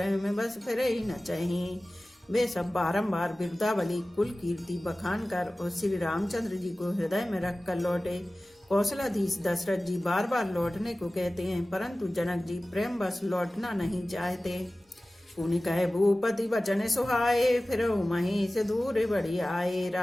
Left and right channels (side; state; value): both; normal; correlation 0.97